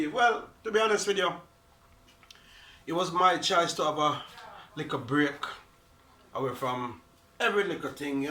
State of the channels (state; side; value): identical; both; correlation 1.00